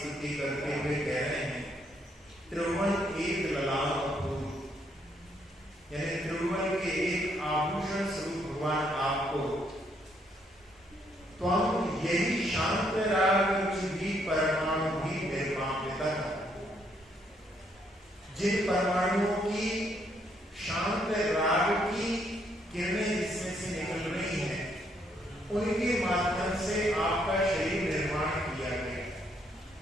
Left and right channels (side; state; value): both; normal; correlation 0.72